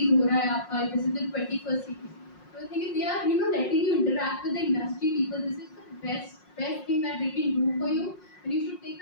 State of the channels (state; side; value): late; right; 5.5 ms